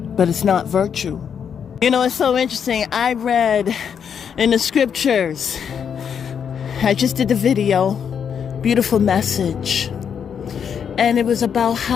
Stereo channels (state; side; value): quieter; right; 7.5 dB